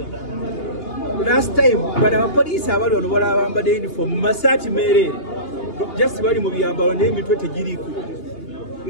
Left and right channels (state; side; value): late; right; 2.8 ms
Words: last time bano abapoliisi abali wano bala abambadde uniform mu masaati meereere just bali mu byambalo naye emitwe tegiriiko.